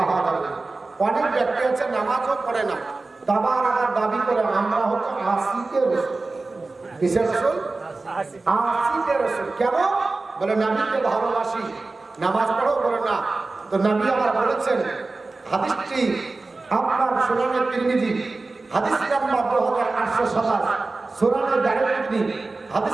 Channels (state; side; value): quieter; left; 3.5 dB